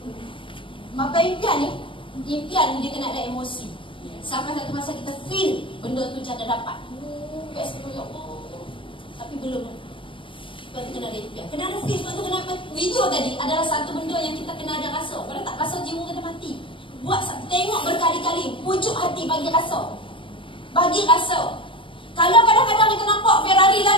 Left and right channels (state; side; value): late; right; 0.25 ms